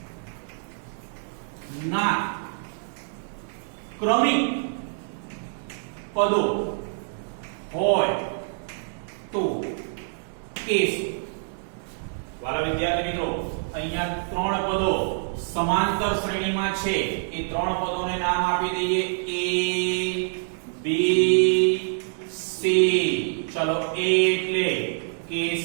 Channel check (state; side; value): silent; left; digital silence